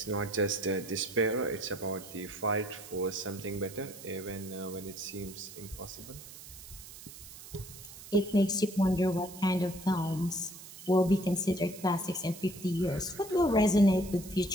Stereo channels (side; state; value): right; noise; hiss, 15 dB below the sound